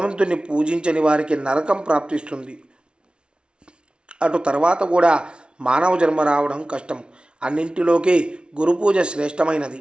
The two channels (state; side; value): late; left; 0.057 ms